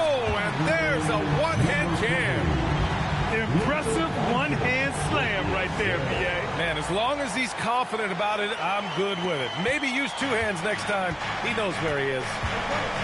and there's a one-hand jam. Impressive one-hand slam right there, BA. Man, as As long as he's confident about it, I'm good with it. Maybe use two hands next time. He knows where he is.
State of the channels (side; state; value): both; identical; correlation 1.00